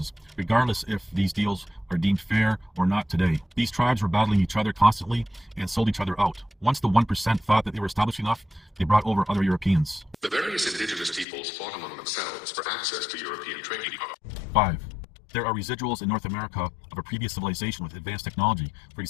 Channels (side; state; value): right; drops out; at 11.2 s